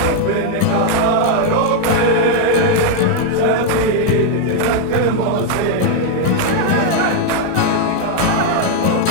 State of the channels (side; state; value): both; different; correlation 0.00